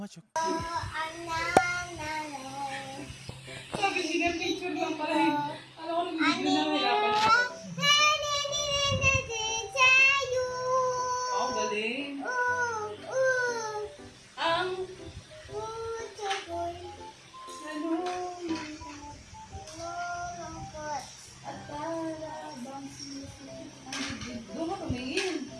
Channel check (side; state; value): both; identical; correlation 1.00